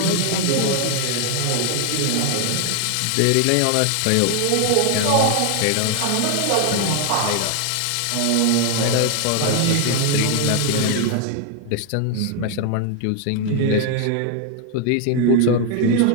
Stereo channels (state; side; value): different; both; correlation 0.00